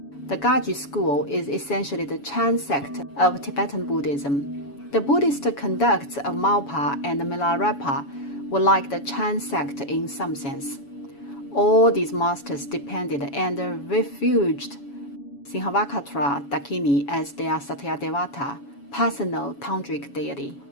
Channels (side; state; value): right; late; 7.1 ms